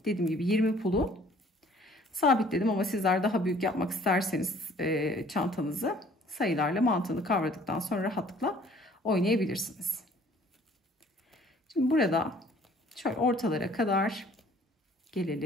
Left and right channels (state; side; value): normal; both; correlation 0.56